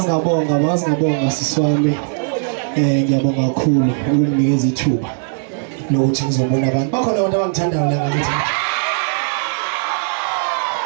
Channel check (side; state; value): left; silent; digital silence